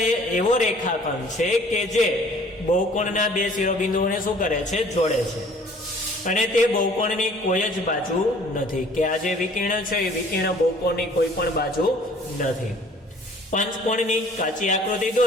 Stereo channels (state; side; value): normal; both; correlation 0.53